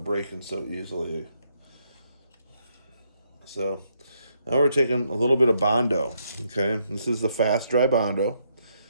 breaking so easily. So now we're taking a little bit of Bondo. Okay, this is the fast dry Bondo.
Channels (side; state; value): both; inverted; correlation -0.75